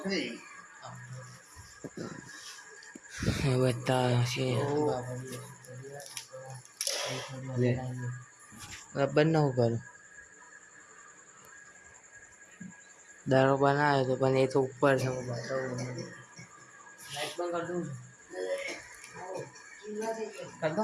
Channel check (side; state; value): both; identical; correlation 1.00